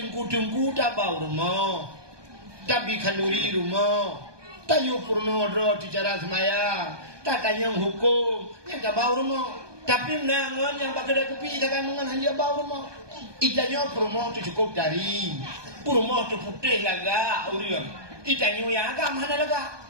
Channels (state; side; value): late; left; 1.2 ms